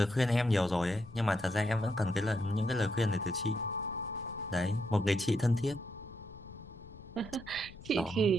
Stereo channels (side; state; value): left; noise; rumble, 18 dB below the sound